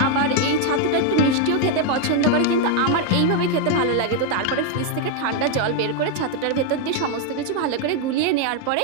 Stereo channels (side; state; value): both; different; correlation 0.01